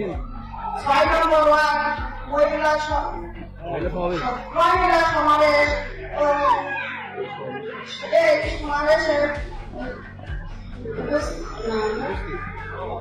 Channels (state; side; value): identical; both; correlation 1.00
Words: 6 নম্বর word মহিলা সমাবেশ ও এই সমাবেশের